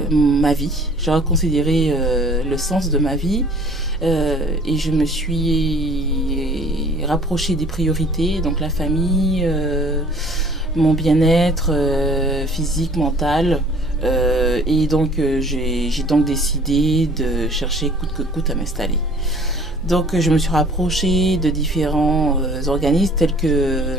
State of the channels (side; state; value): left; noise; hum, 21 dB below the sound